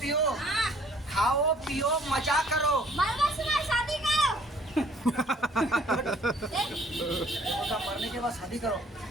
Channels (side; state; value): both; normal; correlation 0.58